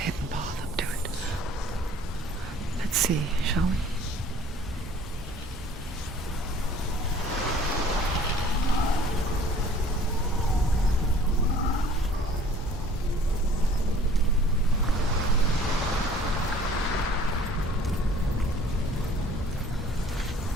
path up to it. Let's see, shall we?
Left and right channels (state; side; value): normal; both; correlation 0.52